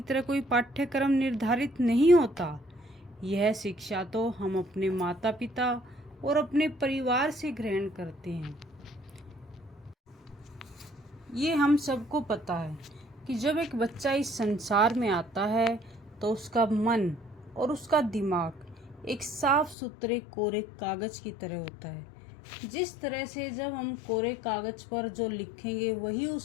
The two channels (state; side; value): drops out; right; at 19.8 s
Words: तरह कोई पाठ्यक्रम निर्धारित नहीं होता। यह शिक्षा तो हम अपने माता पिता और अपने परिवार से ग्रहण करते हैं। ये हम सबको पता है कि जब एक बच्चा इस संसार में आता है तो उसका मन और उसका दिमाग एक साफ सुथरे कोरे कागज की तरह होता है। जिस तरह से जब हम कोरे कागज पर जो लिखेंगे वही